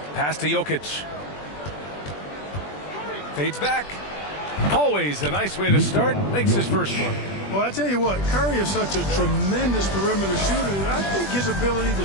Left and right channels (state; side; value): late; right; 20 ms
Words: Pass to Jokic. Fades back. Always a nice way to start. Makes his first one. Well, I tell you what, Curry is such a tremendous perimeter shooter. I think his ability